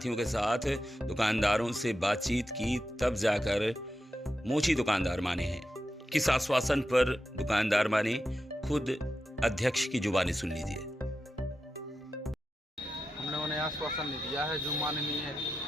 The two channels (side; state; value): both; normal; correlation 0.89